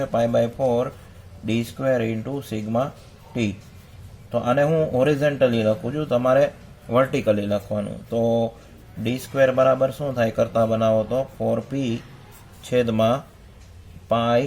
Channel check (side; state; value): both; identical; correlation 1.00